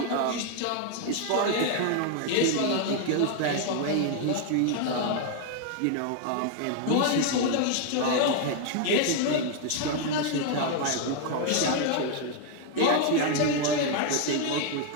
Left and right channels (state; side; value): different; both; correlation 0.00